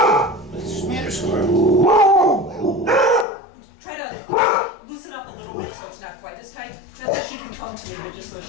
the matter, Scrub? Try to loosen up a little bit so it's not quite as tight. Not that she can come to me, but just so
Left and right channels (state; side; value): drops out; right; at 3.2 s